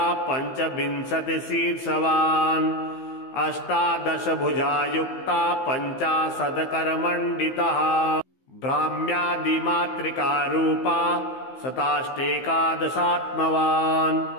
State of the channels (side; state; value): right; late; 15 ms